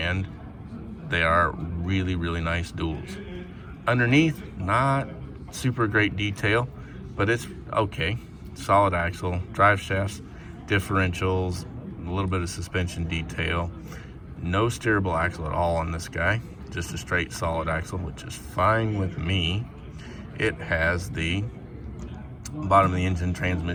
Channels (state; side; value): identical; both; correlation 1.00